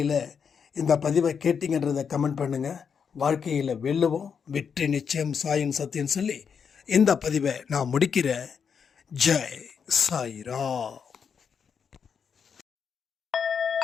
இந்த பதிவை கேட்டிங்கன்றதை கமெண்ட் பண்ணுங்கள். வாழ்க்கையில் வெல்லுவோம், வெற்றி நிச்சயம், சாயின் சத்தியம் சொல்லி இந்த பதிவை நான் முடிக்கிறேன். ஜெய் சாய்ராம்.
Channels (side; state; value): right; quieter; 6.6 dB